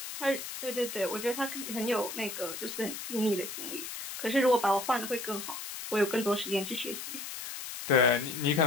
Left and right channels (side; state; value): left; noise; hiss, 8 dB below the sound